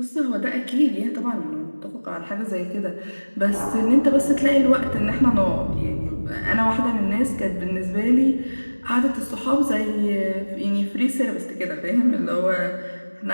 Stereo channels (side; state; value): both; inverted; correlation -1.00